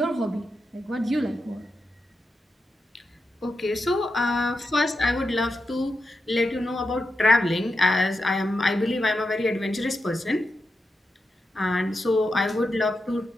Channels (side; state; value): both; normal; correlation 0.88